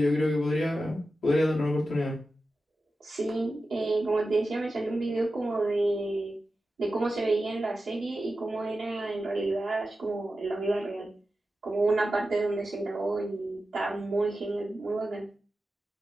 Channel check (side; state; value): both; normal; correlation 0.92